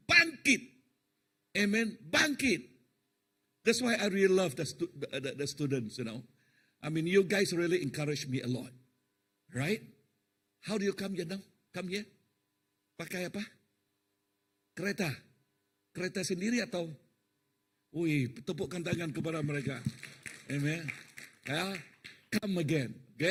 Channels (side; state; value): both; identical; correlation 1.00